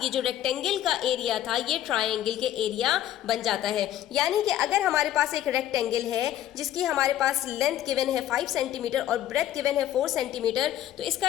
ये जो रेक्टेंगल का एरिया था ये ट्राइंगल के एरिया बन जाता है। यानी कि अगर हमारे पास एक रेक्टेंगल है जिसकी हमारे पास लेंथ गिवन है 5 सेंटीमीटर और ब्रेथ गिवन है 4 सेंटीमीटर, तो इसका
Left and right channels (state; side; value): quieter; right; 12.3 dB